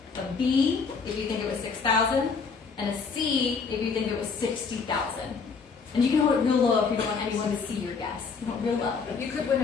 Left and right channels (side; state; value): right; quieter; 5.2 dB